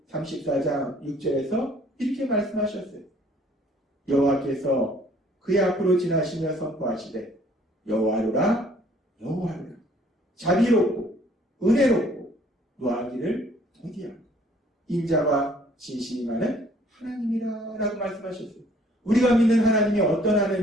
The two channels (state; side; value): normal; both; correlation 0.59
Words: 34장 6절에서 이렇게 말씀하셨어요. 여호와께서 그의 앞으로 지나시며 선포하시되 여호와로라 여호와로라, 자비롭고 은혜롭고 노하기를 더디하고 인자와 진실이 많은 하나님이라 라고 말씀하셨어요. 우리가 믿는 하나님이 어떤